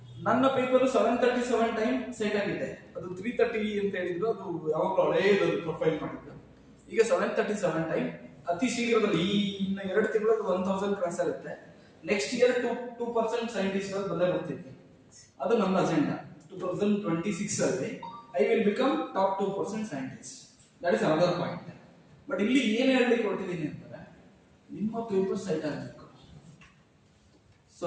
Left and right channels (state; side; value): identical; both; correlation 1.00